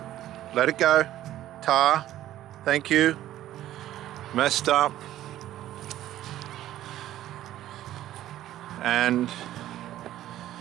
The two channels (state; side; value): quieter; left; 13.4 dB